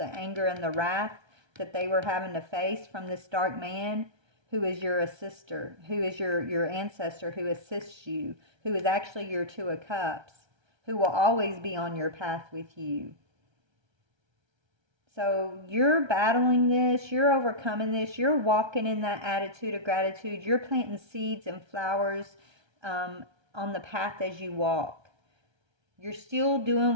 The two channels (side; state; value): left; late; 1.3 ms